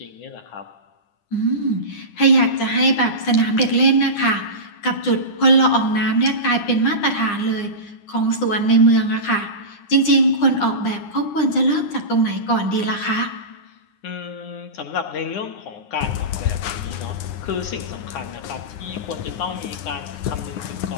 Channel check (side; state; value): right; late; 9.8 ms